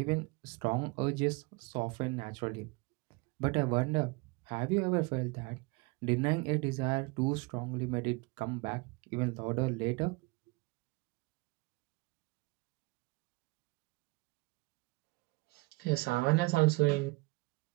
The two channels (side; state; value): left; quieter; 26.3 dB